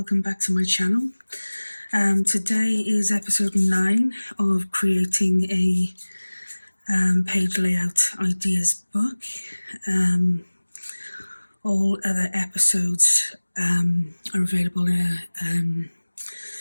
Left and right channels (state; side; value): inverted; both; correlation -1.00